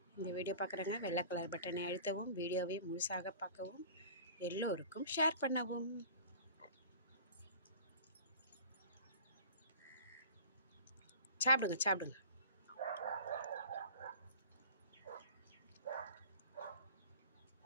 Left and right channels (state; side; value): inverted; both; correlation -0.41